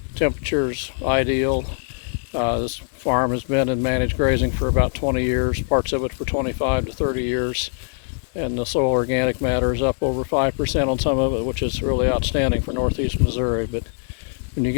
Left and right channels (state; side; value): silent; right; digital silence